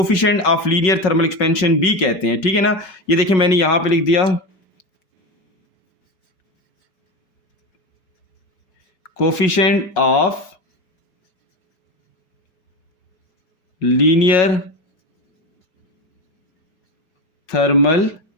of linear thermal expansion भी कहते हैं, ठीक है ना। ये देखिए मैंने यहां पे लिख दिया coefficient of linear thermal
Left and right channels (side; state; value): right; late; 5.4 ms